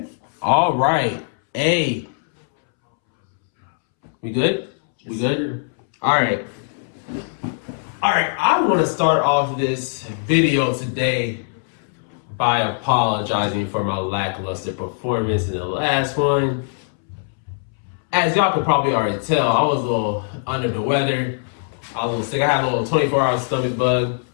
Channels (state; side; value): silent; right; 65 dB below the other